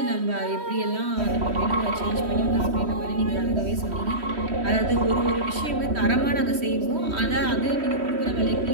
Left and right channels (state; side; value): late; left; 3.1 ms